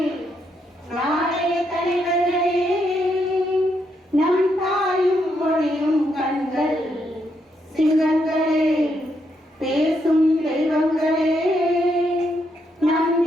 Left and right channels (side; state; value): both; normal; correlation 0.78